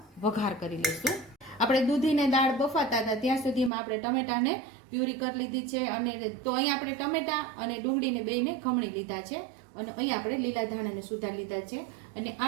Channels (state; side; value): drops out; left; at 3.7 s